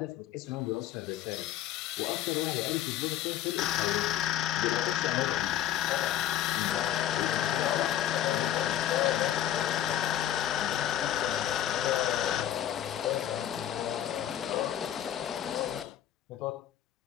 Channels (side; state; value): right; quieter; 11.6 dB